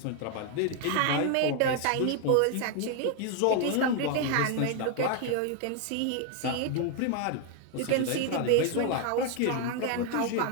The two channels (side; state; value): both; different; correlation 0.01